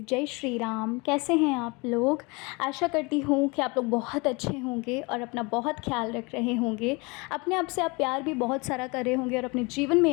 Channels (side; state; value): right; quieter; 27.5 dB